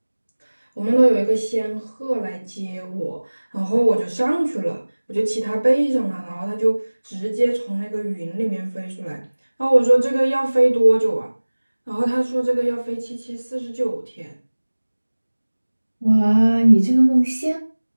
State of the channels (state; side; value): inverted; both; correlation -1.00